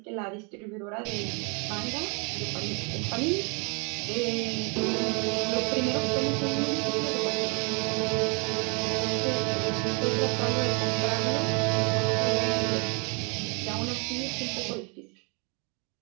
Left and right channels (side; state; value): left; quieter; 33.8 dB